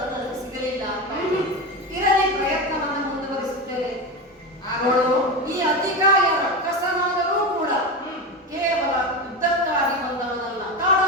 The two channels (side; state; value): both; normal; correlation 0.19